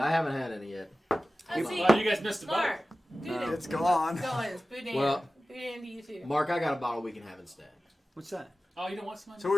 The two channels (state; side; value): normal; both; correlation 0.95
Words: it. haven't had any yet. Let's see. Well, you guys missed the boat. Mark, boudin. It's gone. Go ahead, boudin. Well- Boudin to you too. Mark, I got a bottle we can have instead. What's that? Oh, you don't want some?